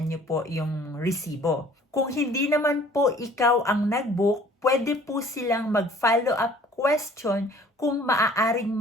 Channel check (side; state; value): both; normal; correlation 0.53